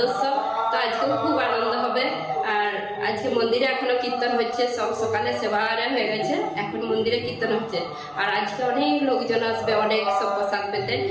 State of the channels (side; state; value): both; identical; correlation 1.00